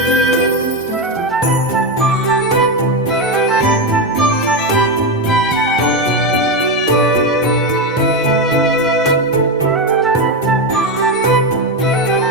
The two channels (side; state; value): both; normal; correlation 0.11